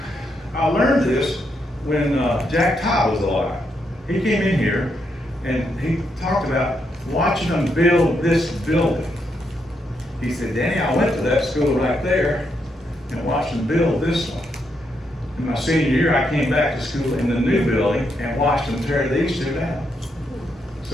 I learned this when Jack Todd was alive. He came in here and he talked about watching them build this building. He said, Danny, I went to that school right there and watched them build this one. In my senior year, I came back to school in the new building and watched them tear these two down.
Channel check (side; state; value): both; normal; correlation 0.79